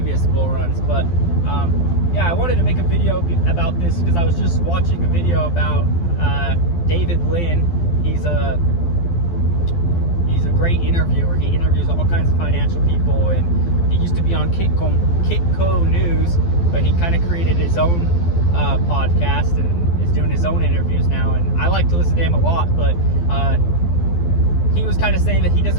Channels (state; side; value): late; right; 12 ms